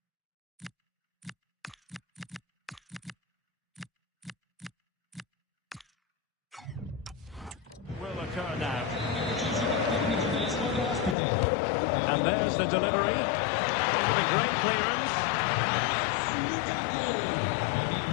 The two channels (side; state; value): right; drops out; at 11.2 s